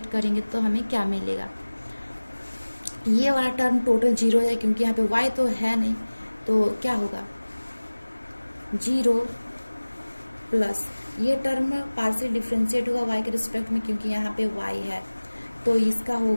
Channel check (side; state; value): both; inverted; correlation -1.00